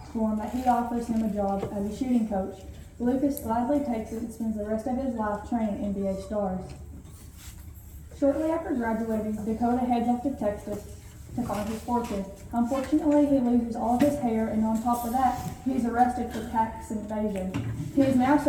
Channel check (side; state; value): both; identical; correlation 1.00